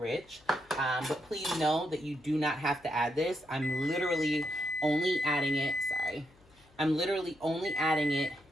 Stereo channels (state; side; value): noise; left; hum, 29 dB below the sound